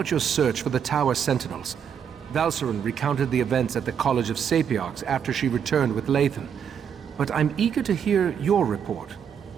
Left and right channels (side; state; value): left; quieter; 7.9 dB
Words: your search for the Tower Sentinels. Valcerin recounted the events at the College of Sapiarchs after she returned with Lathan. But I'm eager to hear your report.